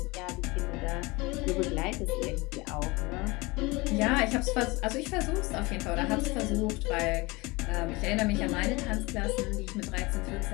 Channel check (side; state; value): right; quieter; 24.1 dB